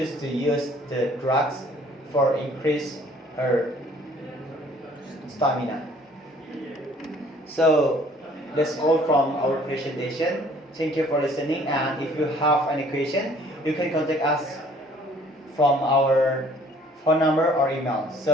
to use the drugs for increase her stamina. So that's all from our presentation. Thank you for listening, and if you have any question, you can contact us from our phone number or email.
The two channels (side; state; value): both; normal; correlation 0.56